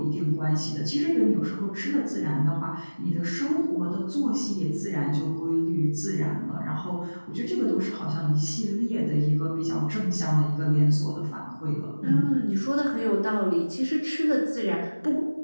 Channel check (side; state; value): both; inverted; correlation -1.00